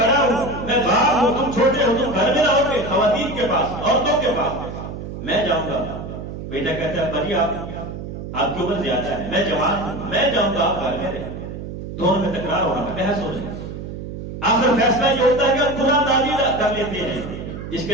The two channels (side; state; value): right; noise; hum, 9 dB below the sound